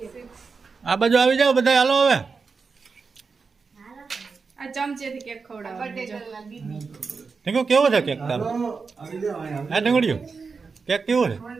આ બાજુ આવી જાઓ બધા. હાલો હવે આ ચમચેથી કેક ખવડાવો ઢીંગુ કેવો છે કેક તારો? હા ઢીંગુડિયું કેક કેવો છે?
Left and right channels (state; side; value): quieter; left; 4.9 dB